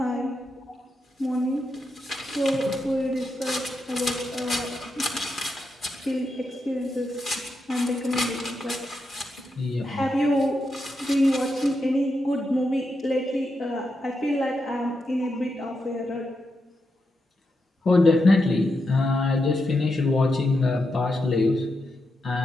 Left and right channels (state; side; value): normal; both; correlation 0.85